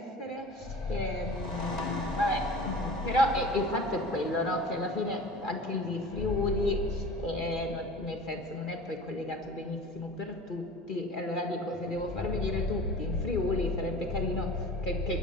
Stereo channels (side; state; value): both; normal; correlation 0.39